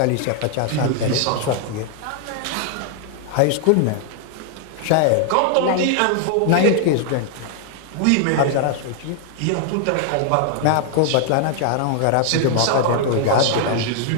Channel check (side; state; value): both; different; correlation 0.00